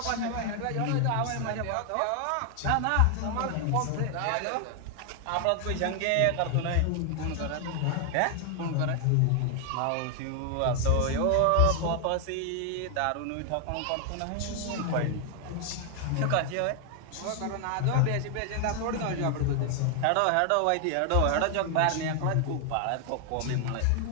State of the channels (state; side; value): different; both; correlation 0.00